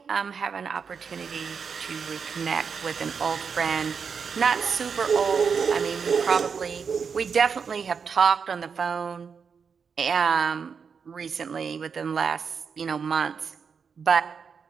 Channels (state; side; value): quieter; left; 6.0 dB